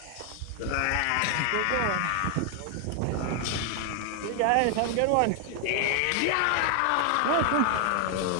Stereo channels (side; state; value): both; different; correlation 0.00